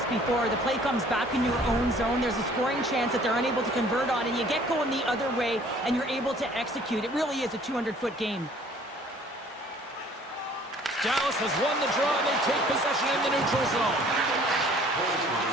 before? The play comes back in your own zone. There's a scoring chance that they're unable to convert on, and you get going the other way, and you're able to execute. It really is a 200-foot game. Dallas has won the draw, and they take possession in the neutral zone.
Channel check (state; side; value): normal; both; correlation 0.55